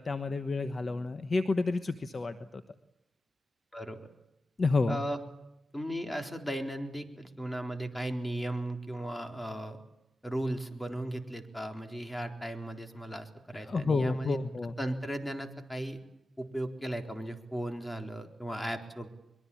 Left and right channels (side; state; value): both; normal; correlation 0.93